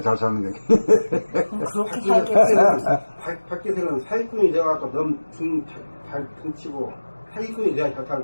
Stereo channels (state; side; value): inverted; both; correlation -1.00